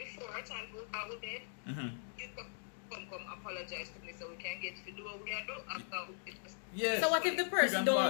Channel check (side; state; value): right; silent; digital silence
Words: a time for go to bed, you come apologize to me so we can get to do what we are doing after it. Yes. So what if the person You can